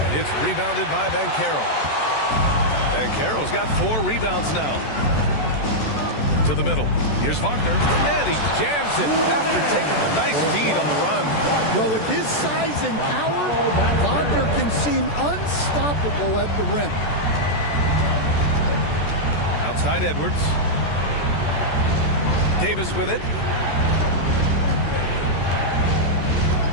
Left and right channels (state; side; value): late; right; 14 ms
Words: It's rebounded by Banchero. Banchero's got 4 rebounds now. To the middle. Here's Wagner. And he jams it after taking a nice feed on the run. Well, with his size and power, Wagner can seem unstoppable at the rim. Outside Edwards. Davis with it.